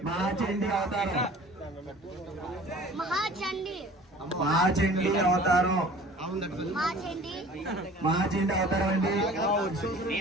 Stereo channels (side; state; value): both; normal; correlation 0.46